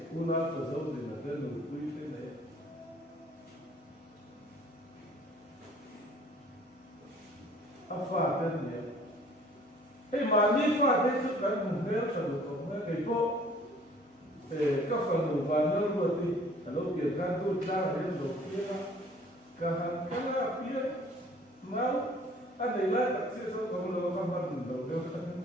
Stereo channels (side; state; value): both; normal; correlation 0.54